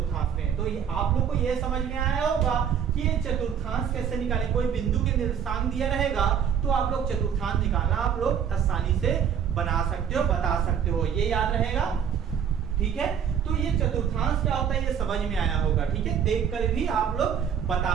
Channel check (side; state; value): left; quieter; 8.1 dB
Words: में। तो ये आप लोग को ये समझ में आया होगा कि ये चतुर्थांश कैसे निकालें। कोई बिंदु के निर्देशांक दिया रहेगा तो आप लोग चतुर्थांश निकालना आप लोग आसानी से बना सकते हो, बता सकते हो, ये याद रहेगा। ठीक है, तो ये चतुर्थांश क्या होता है ये समझ में आया होगा। ठीक है, देखकर भी आप लोग